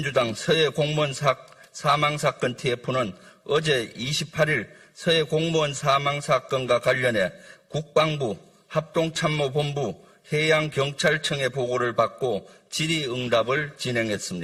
서해 공무원 사망 사건 TF는 어제 28일 서해 공무원 사망 사건과 관련해 국방부 합동참모본부 해양경찰청의 보고를 받고 질의응답을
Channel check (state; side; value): identical; both; correlation 1.00